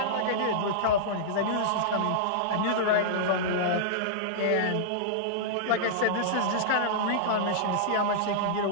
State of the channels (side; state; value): both; different; correlation -0.02